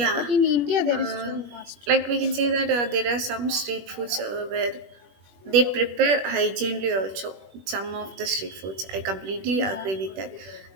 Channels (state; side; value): late; left; 21 ms